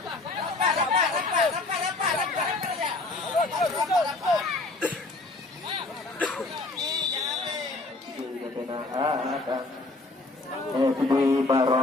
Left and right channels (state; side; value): quieter; right; 3.1 dB